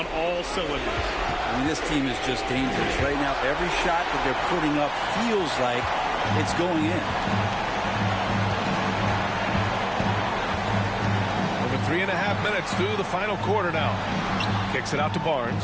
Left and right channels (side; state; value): both; identical; correlation 1.00